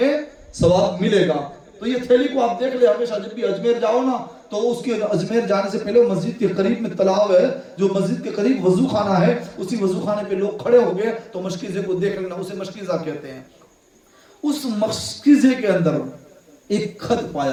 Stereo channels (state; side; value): identical; both; correlation 1.00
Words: ثواب ملے گا. تو یہ تھیلی کو آپ دیکھ لیں ہمیشہ جب بھی اجمیر جاؤ نا تو اس کے اجمیر جانے سے پہلے مسجد کے قریب میں تلاؤ ہے، جو مسجد کے قریب وضو خانہ ہے، اسی وضو خانے پہ لوگ کھڑے ہو گئے تو مشکیزے کو دیکھ لینا، اسے مشکیزہ کہتے ہیں. اس مشکیزے کے اندر ایک خط